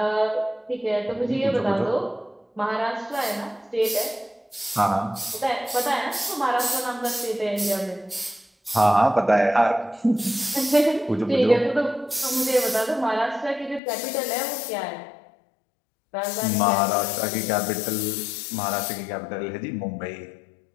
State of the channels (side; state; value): right; drops out; at 13.8 s